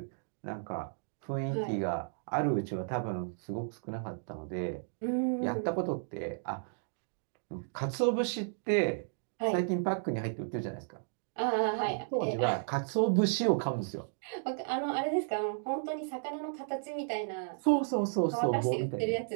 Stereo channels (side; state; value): left; silent; digital silence